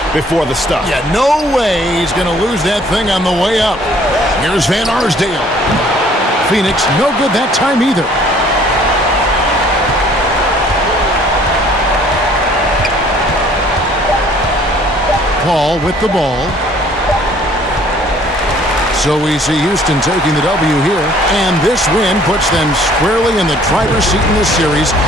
before the stuff? Yeah, no way he's going to lose that thing on the way up. Here's Van Arsdale. Phoenix, no good that time either. Paul with the ball. So we see Houston taking the W here, and this win puts them squarely in the driver's seat in this series.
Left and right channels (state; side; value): normal; both; correlation 0.57